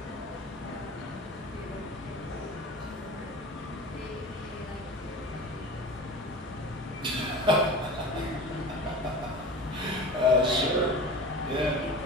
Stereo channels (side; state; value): both; normal; correlation 0.35